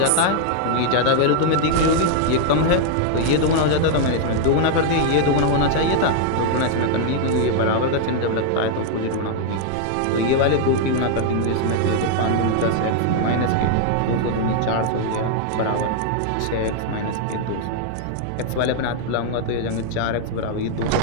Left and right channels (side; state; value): both; different; correlation 0.00